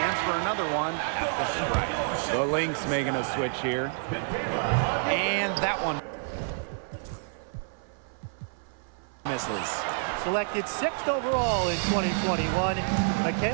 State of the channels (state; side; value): silent; left; 56 dB below the other